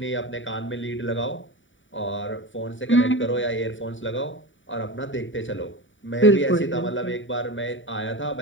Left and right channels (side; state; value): right; late; 0.56 ms